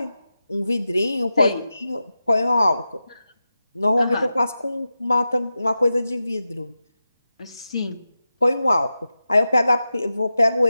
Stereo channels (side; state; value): both; inverted; correlation -0.92